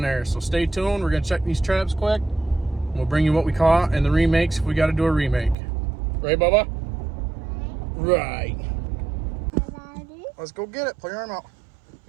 there. So stay tuned. We're gonna check these traps quick. We'll bring you what we caught and the remakes if we got to do a remake. Right, Bubba? Right. Let's go get it. Pull your arm out.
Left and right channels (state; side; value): drops out; left; at 5.6 s